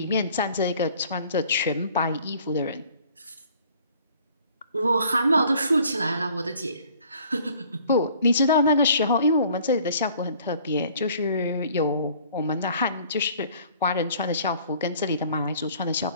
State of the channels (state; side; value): inverted; both; correlation -0.55